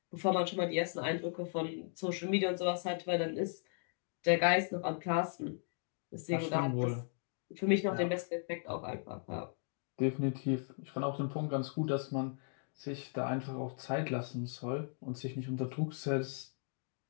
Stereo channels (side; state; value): right; silent; digital silence